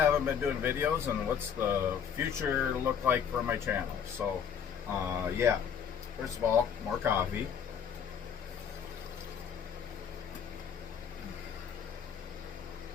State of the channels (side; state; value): right; quieter; 7.7 dB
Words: been doing videos and what's the future look like for my channel. So yeah, first of all, more coffee.